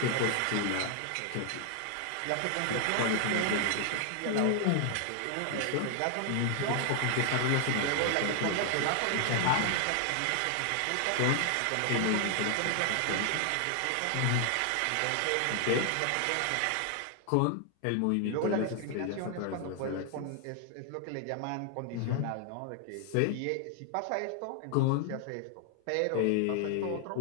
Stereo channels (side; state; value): both; different; correlation 0.00